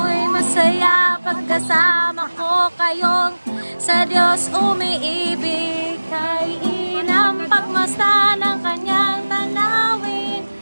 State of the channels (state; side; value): inverted; both; correlation -1.00